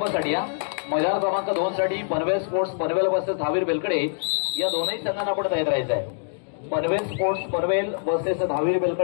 या मैदान क्रमांक 2 साठी पनवेल स्पोर्ट्स पनवेल वर्सेस धावीर बेलकडे या दोनही संघांना आपण तयार राहायचं आहे. पनवेल स्पोर्ट्स पनवेल वर्सेस धावीर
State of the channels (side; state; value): right; silent; digital silence